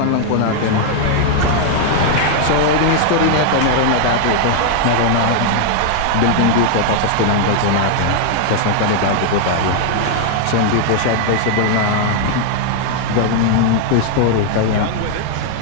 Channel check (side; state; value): both; different; correlation 0.00